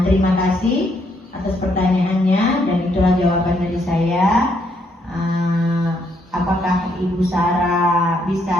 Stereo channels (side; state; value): both; normal; correlation 0.73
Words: terima kasih atas pertanyaannya dan itulah jawaban dari saya. Apakah Ibu Sarah